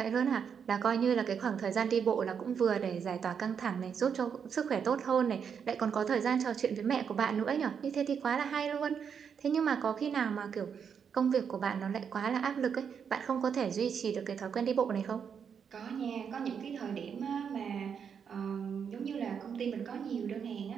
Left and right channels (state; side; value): quieter; left; 7.1 dB